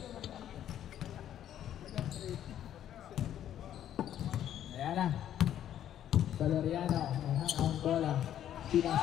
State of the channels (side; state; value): right; quieter; 10.9 dB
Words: Ayan na. Valeriano, ang bola.